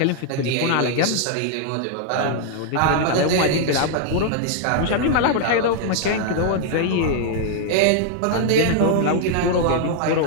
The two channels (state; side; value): different; both; correlation -0.01